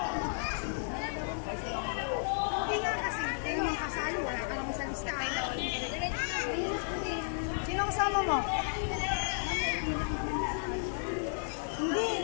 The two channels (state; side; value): silent; right; digital silence